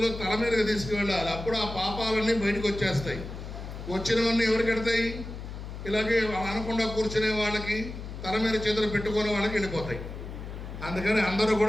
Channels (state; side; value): noise; left; hum, 9 dB below the sound